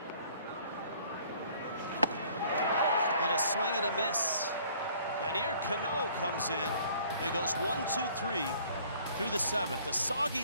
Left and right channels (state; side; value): inverted; both; correlation -0.56